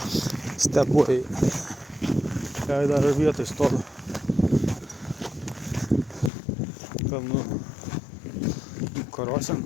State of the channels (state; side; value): drops out; right; at 6.3 s